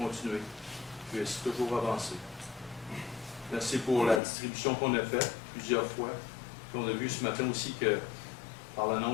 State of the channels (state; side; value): drops out; right; at 4.2 s